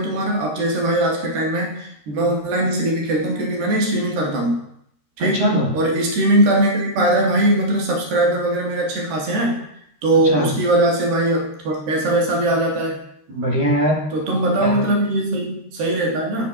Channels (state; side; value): late; left; 13 ms